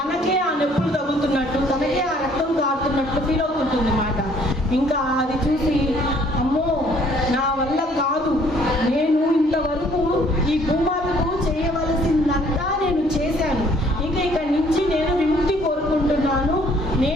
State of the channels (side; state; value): both; normal; correlation 0.61